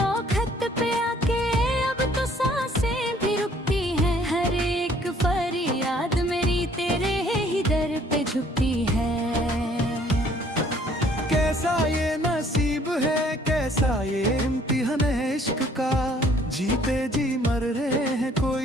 पे आके अब तो सांसें भी रुकती हैं। हर एक फरियाद मेरी तेरे ही दर पे झुकती है। कैसा ये नसीब है, कैसा ये इम्तिहान है इश्क का। जीते जी मर रहे हैं,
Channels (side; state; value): both; normal; correlation 0.60